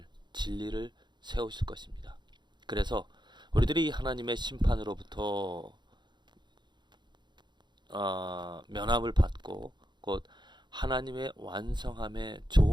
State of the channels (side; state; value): left; late; 0.22 ms